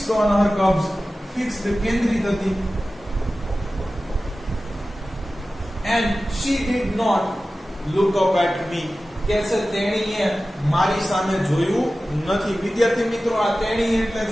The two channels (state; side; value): normal; both; correlation 0.95